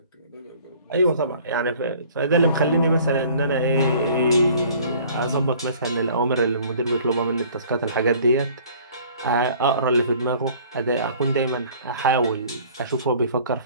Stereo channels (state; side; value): inverted; both; correlation -0.52